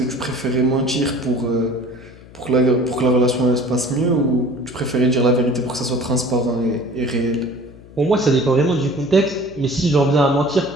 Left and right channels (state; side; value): noise; left; hum, 21 dB below the sound